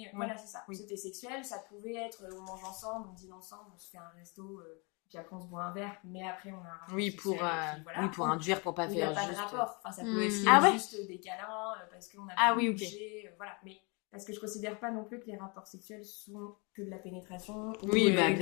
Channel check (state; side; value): quieter; right; 31.3 dB